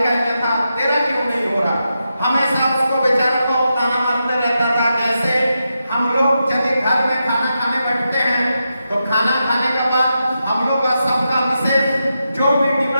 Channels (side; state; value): both; inverted; correlation -0.87